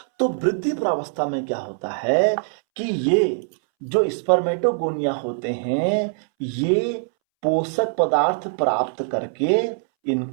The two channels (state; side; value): silent; left; 64 dB below the other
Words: तो वृद्धि प्रावस्था में क्या होता है कि ये जो स्पर्मेटोगोनिया होते हैं ये पोषक पदार्थ प्राप्त करके